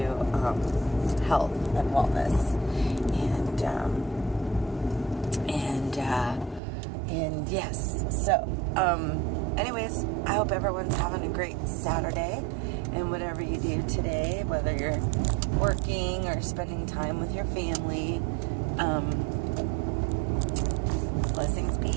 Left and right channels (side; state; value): left; drops out; at 6.6 s